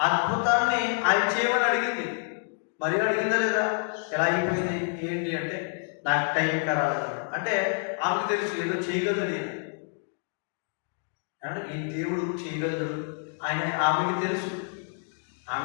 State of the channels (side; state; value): right; silent; 59 dB below the other